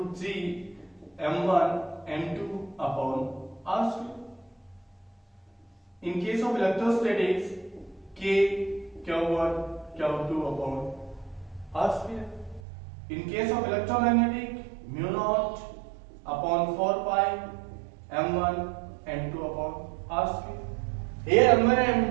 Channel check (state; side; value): drops out; left; at 12.6 s